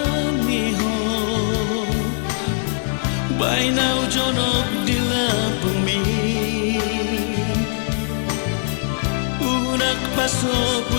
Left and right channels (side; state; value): right; silent; digital silence